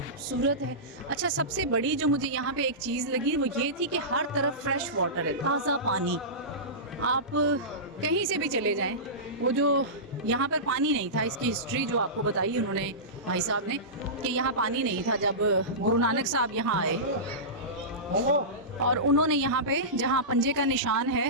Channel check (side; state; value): both; normal; correlation -0.19